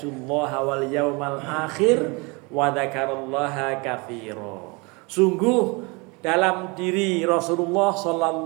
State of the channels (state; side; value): quieter; left; 28.6 dB